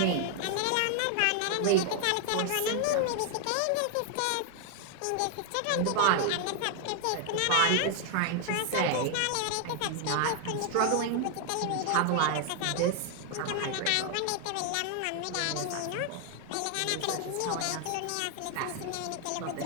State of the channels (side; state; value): both; different; correlation 0.00